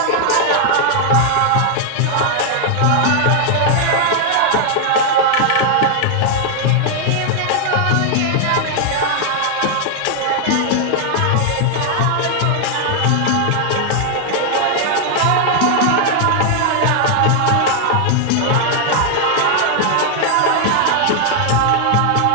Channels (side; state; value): both; different; correlation 0.00